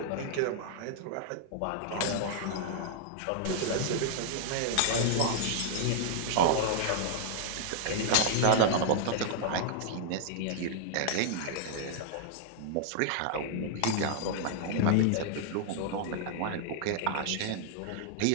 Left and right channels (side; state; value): both; different; correlation -0.01